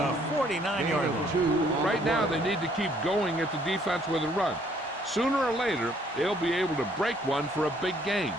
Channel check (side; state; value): both; normal; correlation 0.64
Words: 49-yard line. Right now, they need to keep going at the defense with a run. Sooner or later, they'll be able to break one for a big gain.